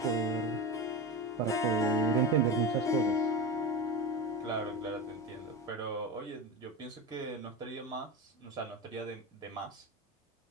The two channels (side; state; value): both; normal; correlation 0.22